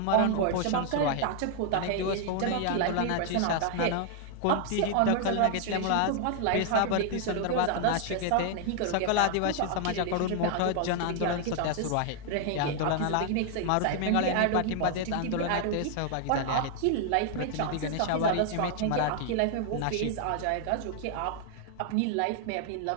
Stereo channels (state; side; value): different; both; correlation 0.00